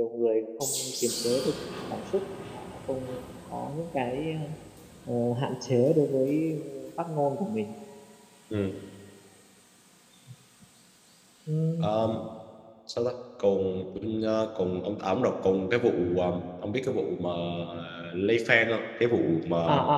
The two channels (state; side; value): identical; both; correlation 1.00